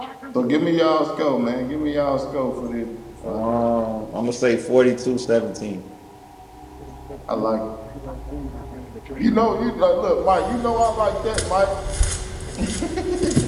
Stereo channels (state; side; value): identical; both; correlation 1.00